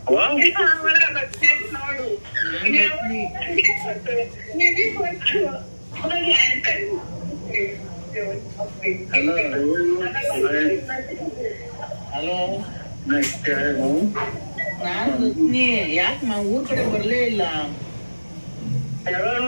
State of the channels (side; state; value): both; inverted; correlation -1.00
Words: ಹಲೋ ಹಲೋ, ನಾನ್ ರತ್ನಿ. ಯಾಕೆ ಊರ್ ಕಡೆ ಬರ್ಲೇ ಇಲ್ಲ?